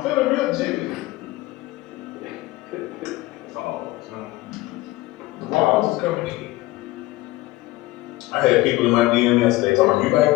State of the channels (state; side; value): quieter; right; 18.9 dB